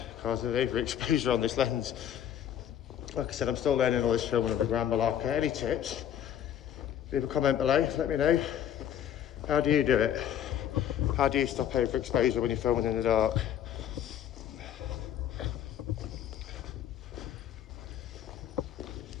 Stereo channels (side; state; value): right; quieter; 10.1 dB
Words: because of the overexposure on this lens. Like I said, I'm still learning all this filming of the Grand Malacca. Any tips? Leave a comment below, let me know. How do you do it? How do you stop overexposure when you're filming in the dark?